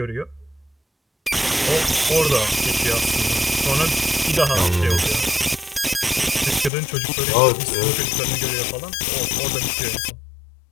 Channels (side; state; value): right; drops out; at 6.7 s